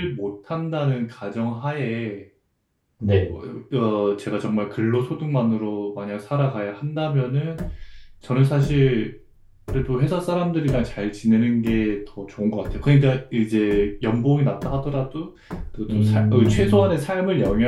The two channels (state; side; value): identical; both; correlation 1.00